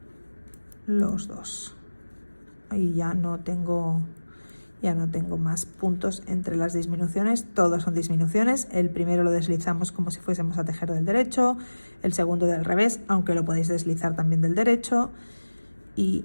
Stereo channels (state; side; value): inverted; both; correlation -1.00